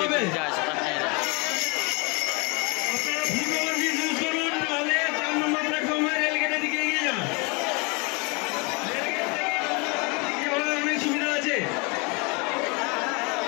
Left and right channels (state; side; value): quieter; right; 30.5 dB